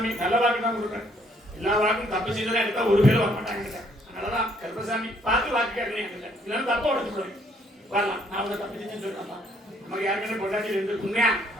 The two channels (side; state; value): both; normal; correlation 0.67